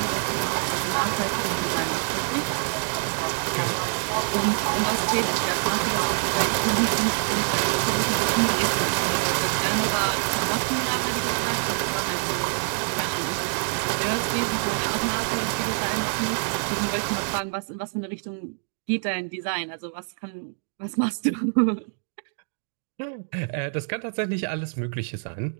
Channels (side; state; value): left; silent; digital silence